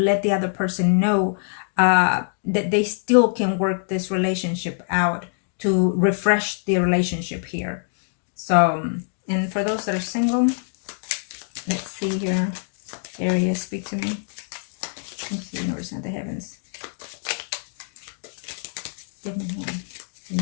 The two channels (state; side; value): silent; right; digital silence